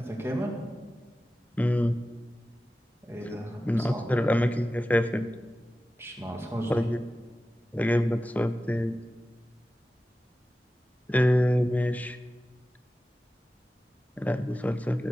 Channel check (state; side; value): normal; both; correlation 0.94